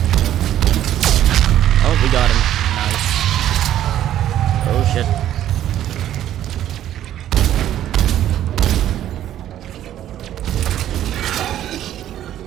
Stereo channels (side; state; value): left; quieter; 11.8 dB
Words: Oh, we got him. Nice. Oh shit.